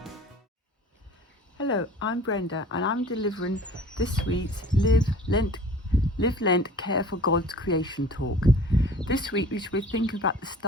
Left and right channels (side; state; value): both; normal; correlation 0.46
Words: Hello, I'm Brenda and I'm delivering this week's Live Lent Care for God's Creation talk. This week we should be thinking about the